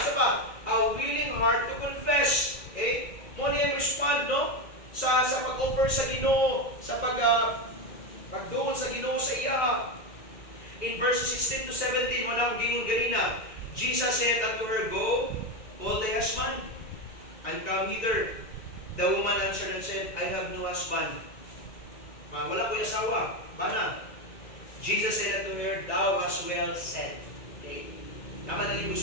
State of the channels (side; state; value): right; late; 2.1 ms